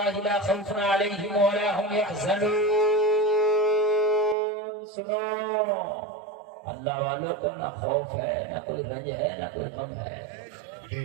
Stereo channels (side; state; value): left; drops out; at 4.4 s